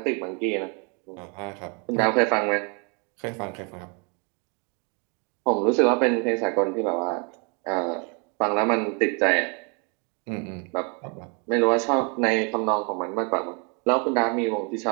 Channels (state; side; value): quieter; left; 34.8 dB